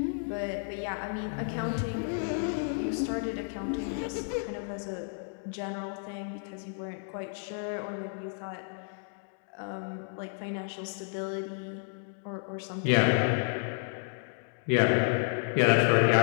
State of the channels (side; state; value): right; silent; 57 dB below the other